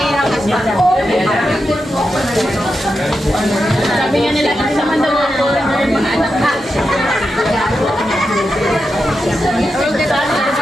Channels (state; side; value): normal; both; correlation 0.88